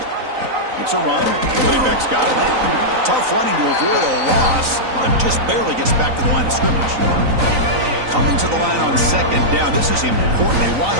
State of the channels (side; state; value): left; late; 3.9 ms